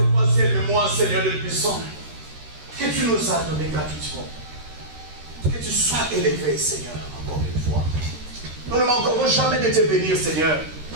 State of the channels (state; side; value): late; left; 13 ms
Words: toi, ciel et moi, Seigneur de puissant, que tu nous as donné gratuitement. Que tu sois élevé, Seigneur, encore une fois. Nous ne manquerons jamais de te bénir, Seigneur,